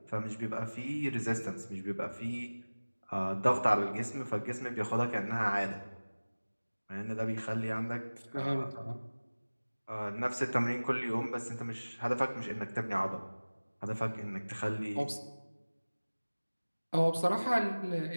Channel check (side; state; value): both; inverted; correlation -1.00